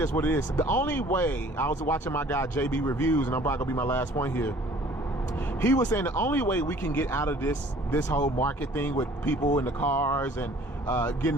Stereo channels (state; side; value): normal; both; correlation 0.52